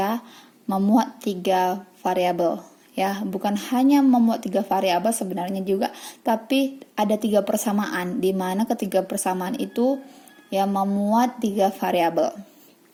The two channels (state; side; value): identical; both; correlation 1.00